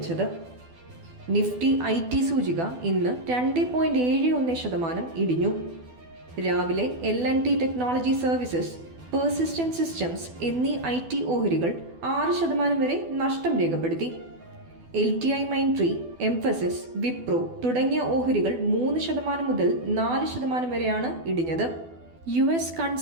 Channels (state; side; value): late; left; 12 ms